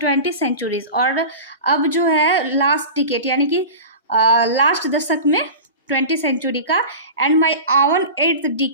centuries, और अब जो है लास्ट डिकेड यानी कि लास्ट दशक में 20th सेंचुरी का, एंड माई आवन 8th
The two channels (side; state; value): both; inverted; correlation -0.32